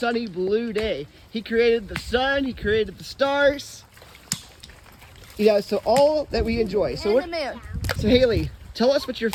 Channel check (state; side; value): identical; both; correlation 1.00